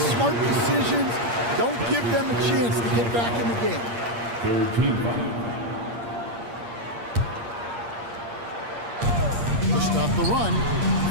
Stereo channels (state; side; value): late; left; 8.6 ms